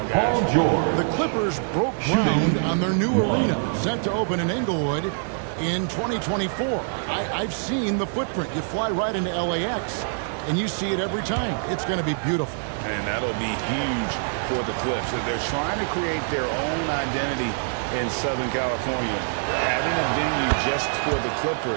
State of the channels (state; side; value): silent; left; 58 dB below the other